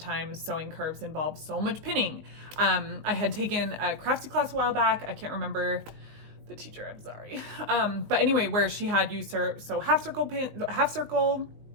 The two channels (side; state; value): left; late; 19 ms